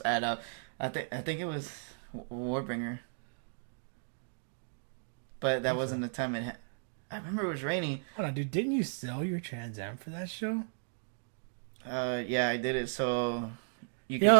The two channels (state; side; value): silent; left; digital silence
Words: at I think it was Warbringer. But that wasn't the time I remember it was raining. Hold on, dude. Didn't you sell your Trans Am for that show? Yeah, I did it so you